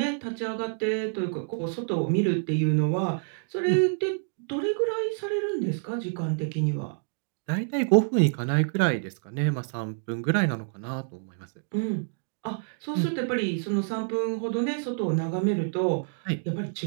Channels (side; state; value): left; silent; digital silence